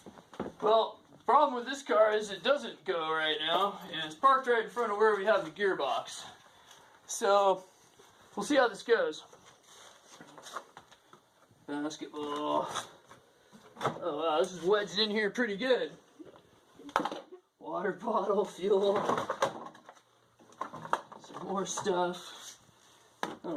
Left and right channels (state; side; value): identical; both; correlation 1.00